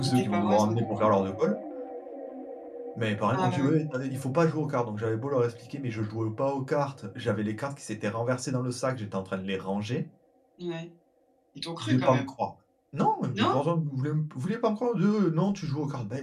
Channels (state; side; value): identical; both; correlation 1.00